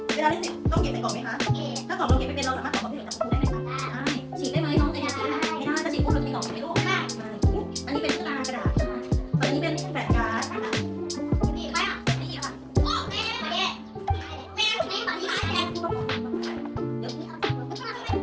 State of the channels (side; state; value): both; identical; correlation 1.00